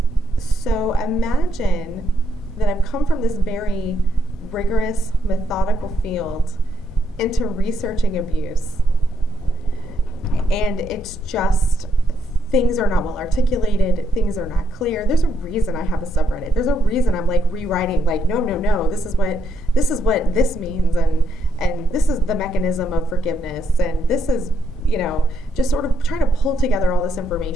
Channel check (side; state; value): both; normal; correlation 0.76